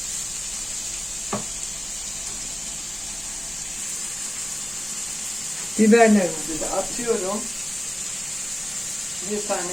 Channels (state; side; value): noise; right; hum, 24 dB below the sound